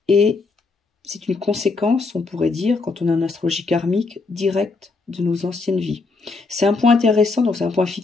et c'est une conséquence, on pourrait dire, quand on a une astrologie karmique directe de nos anciennes vies. C'est un point intéressant, donc c'est un point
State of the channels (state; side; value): quieter; right; 3.9 dB